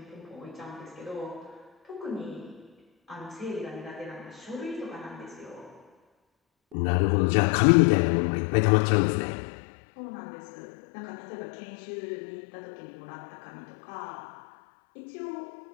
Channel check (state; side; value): drops out; right; at 6.8 s